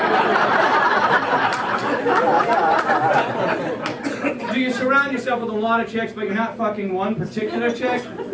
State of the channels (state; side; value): identical; both; correlation 1.00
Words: Do you surround yourself with a lot of chicks, but you're not fucking one particular chick?